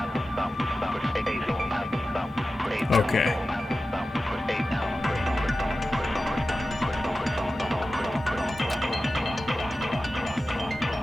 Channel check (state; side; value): normal; both; correlation 0.94